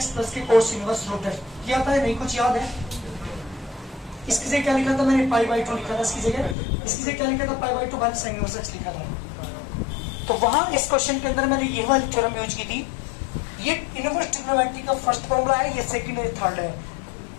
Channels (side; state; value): right; drops out; at 6.6 s